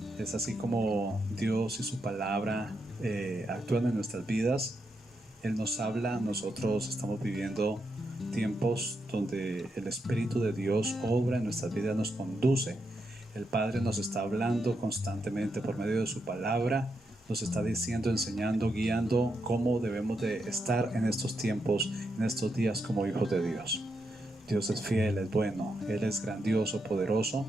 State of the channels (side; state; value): both; normal; correlation 0.82